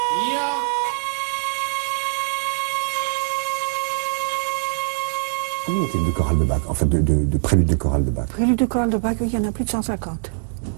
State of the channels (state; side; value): silent; left; digital silence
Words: Combien y a-t-il de chorales de Bach, en fait de préludes de chorales de Bach? Préludes de chorale de Bach, il y en a plus de 150.